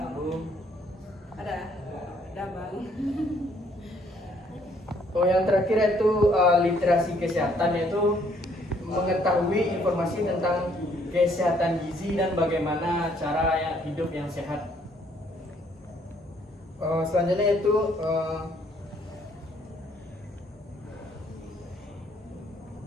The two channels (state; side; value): normal; both; correlation 0.65